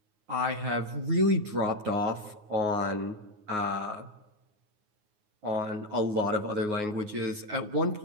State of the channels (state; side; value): late; left; 9.5 ms